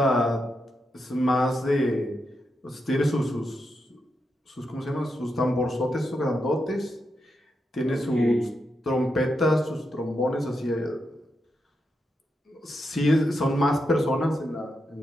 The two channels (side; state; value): both; normal; correlation 0.85